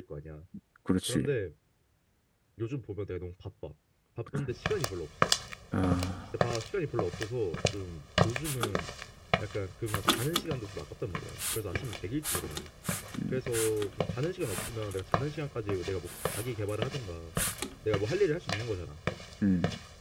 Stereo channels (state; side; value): identical; both; correlation 1.00